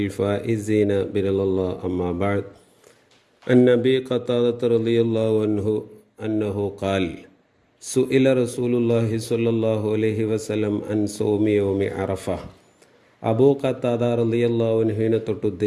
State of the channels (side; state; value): both; identical; correlation 1.00